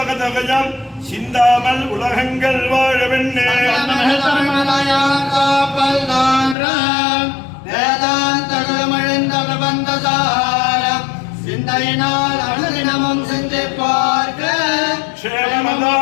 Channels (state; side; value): drops out; right; at 6.6 s